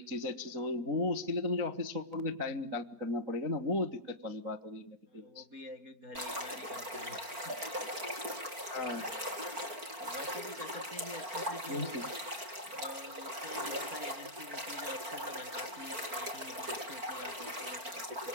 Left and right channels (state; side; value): late; left; 4.4 ms